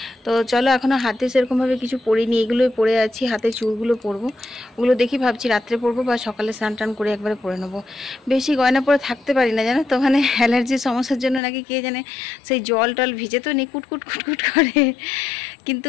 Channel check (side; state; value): right; drops out; at 11.4 s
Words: তো চলো এখনও হাতে সেরকমভাবে কিছু পরিনি, এগুলোই পরে আছি। হাতে চুড়গুলো পরবো, ওগুলো দেখি ভাবছি রাত্রে পরবো বা সকালে স্নান টান করে একবারে পরে নেবো। বেশি গয়না পরে থাকতে পারি না জানো তো, ওখানে অ্যালার্জির সমস্যার জন্য নাকি কে জানে সেই জল টল ভিজে তো নি কুটকুট কুটকুট করে, কিন্তু